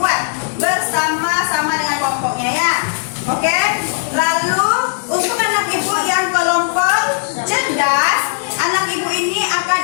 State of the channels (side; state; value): right; silent; digital silence